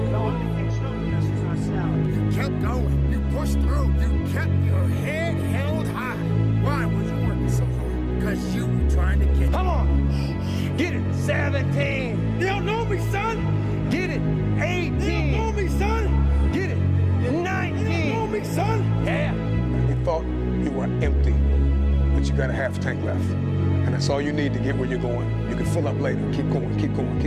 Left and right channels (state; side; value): identical; both; correlation 1.00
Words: You kept going. You pushed through. You kept your head held high. Why was you working so hard? Because you were trying to get it. Come on! Get it! 17! You don't know me, son! Get it! 18! You don't know me, son! Get it! 19! You don't know me, son! Yeah! You thought you were empty, but you got a half tank left. And that's all you need to get where you're going. You can fill up later. Keep going, keep going,